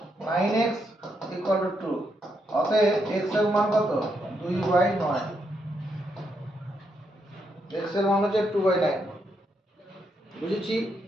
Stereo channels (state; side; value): normal; both; correlation 0.79